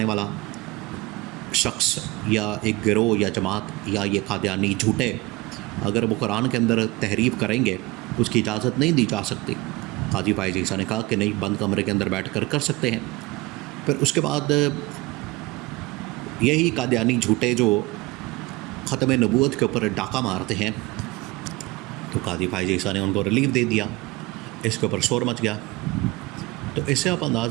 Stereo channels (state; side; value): quieter; left; 21.0 dB